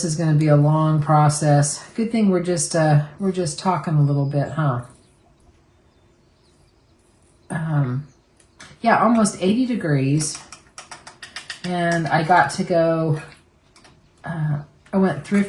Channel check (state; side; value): identical; both; correlation 1.00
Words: is going to be a long process. Good thing we're just talking a little bit, huh? Yeah, almost 80 degrees. And I got to go, I went